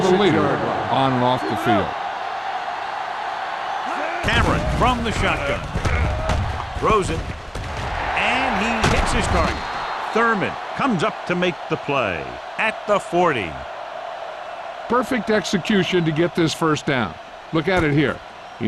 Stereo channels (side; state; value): both; identical; correlation 1.00